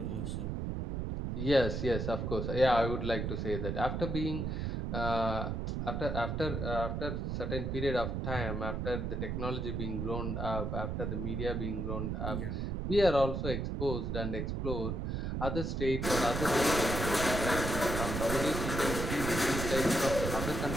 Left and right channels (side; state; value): right; noise; rumble, 2 dB below the sound